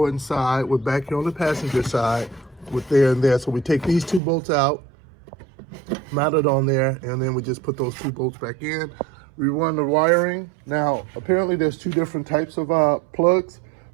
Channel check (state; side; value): drops out; left; at 4.2 s